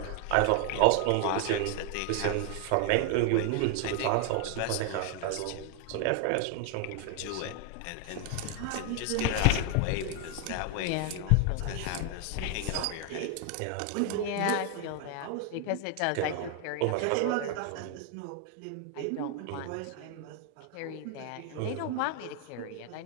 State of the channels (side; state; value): both; different; correlation 0.00